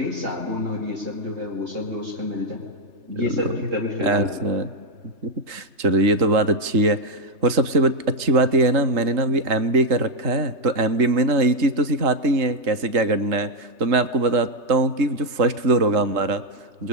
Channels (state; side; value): late; left; 3.3 ms